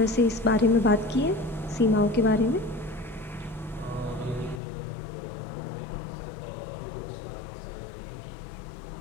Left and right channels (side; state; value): right; drops out; at 4.6 s